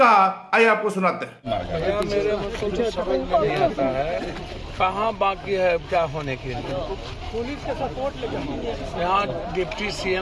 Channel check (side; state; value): both; identical; correlation 1.00